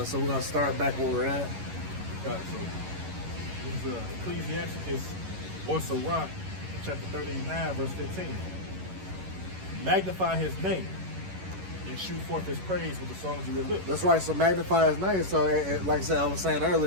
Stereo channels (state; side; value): late; left; 11 ms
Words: so we're going to start back where we're at. Got it. So, this is Ecclesiasticus or Sirach, chapter 39, verse 15. Magnify his name and shoot forth his praise with the songs of your lips. That's right, so magnify his name. So, like I said, I was saying